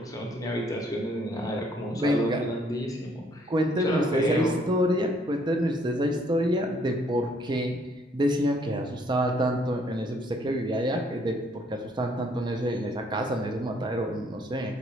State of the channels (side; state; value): both; normal; correlation 0.65